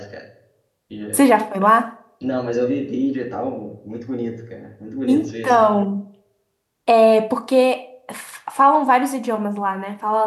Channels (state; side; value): identical; both; correlation 1.00